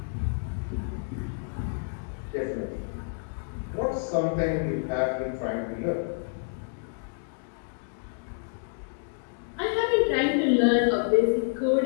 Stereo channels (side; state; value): right; silent; digital silence